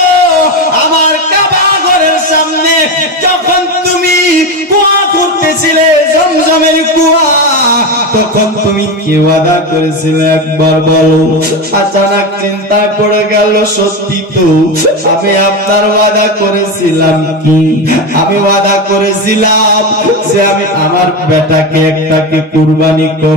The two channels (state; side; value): normal; both; correlation 0.18